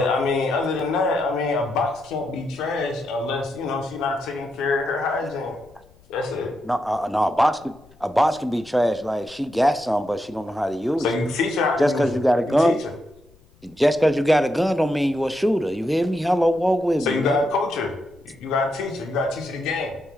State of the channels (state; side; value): noise; left; rumble, 28 dB below the sound